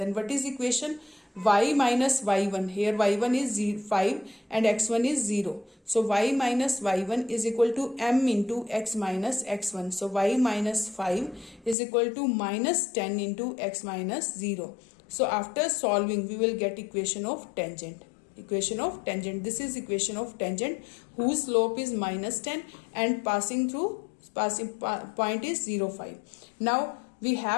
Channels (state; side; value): drops out; right; at 11.8 s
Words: what is equation? Y minus y1. Here y1 is 5 and x1 is 0. So y minus y1 is equal to m into x minus x1. So y minus 5 is equal to minus 10 into x minus 0. So after solving, we will get equation of tangent. Equation of tangent. This is equation of tangent whose slope is minus 10 and passing point is 0, 5. Now we